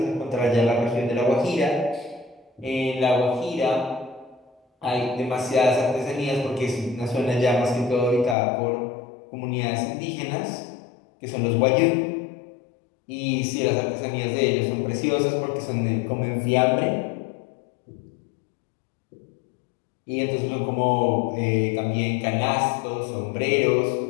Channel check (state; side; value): drops out; right; at 8.3 s